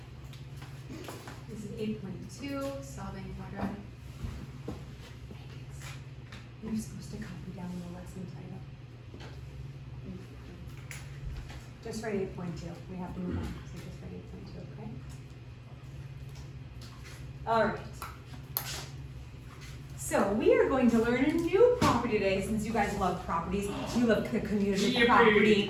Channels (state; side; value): identical; both; correlation 1.00